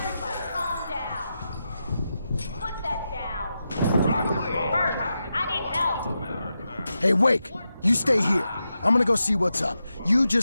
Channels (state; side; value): inverted; both; correlation -0.89